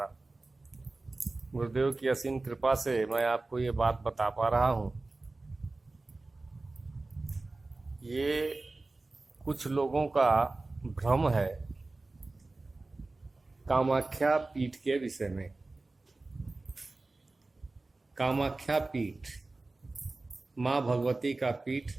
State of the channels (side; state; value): left; quieter; 3.2 dB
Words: गुरुदेव की असीम कृपा से मैं आपको ये बात बता पा रहा हूँ। ये कुछ लोगों का भ्रम है कामाख्या पीठ के विषय में। कामाख्या पीठ माँ भगवती का पीठ,